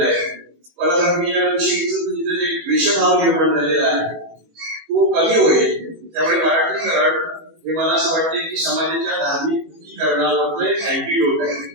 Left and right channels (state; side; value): late; left; 18 ms